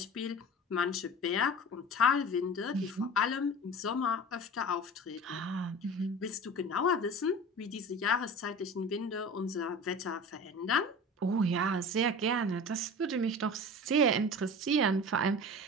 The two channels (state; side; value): normal; both; correlation 0.35